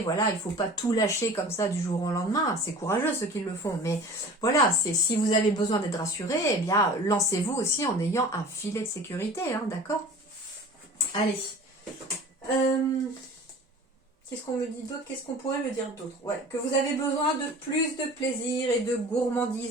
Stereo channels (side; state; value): both; normal; correlation 0.41